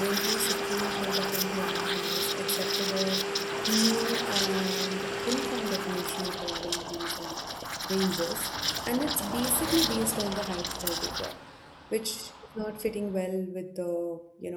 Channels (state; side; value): identical; both; correlation 1.00